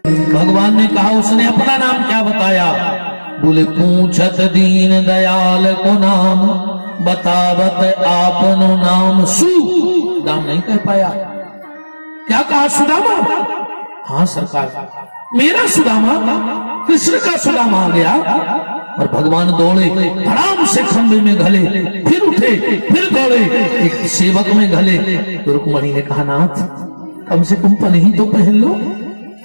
भगवान ने कहा उसने अपना नाम क्या बताया? बोले पूछत दीन दयाल को नाम, बतावत आपनो नाम सु, नाम नहीं कह पाया। क्या कहा? सुदामा। हाँ सरकार, मेरा सुदामा, कृष्ण का सुदामा आ गया। और भगवान दौड़े, धड़ाम से खंभे में घले, फिर उठे, फिर दौड़े, एक सेवक में घले। तो रुक्मणी ने कहा नाथ कम से कम पन्ही तो पहन लो।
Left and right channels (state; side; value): inverted; both; correlation -1.00